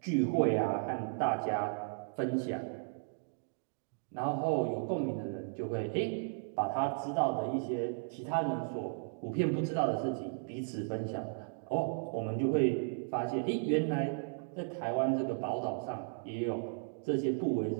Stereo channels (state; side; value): silent; left; digital silence